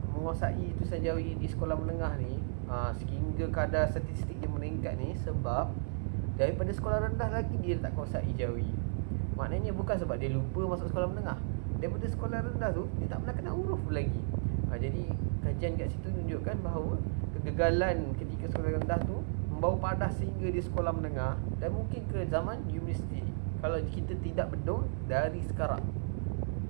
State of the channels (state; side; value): silent; left; digital silence